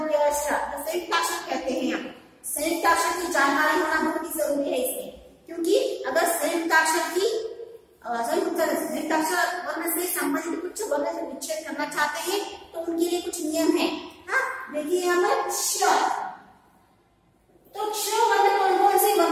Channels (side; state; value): both; identical; correlation 1.00